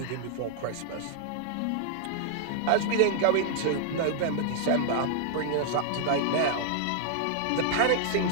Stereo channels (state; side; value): different; both; correlation -0.01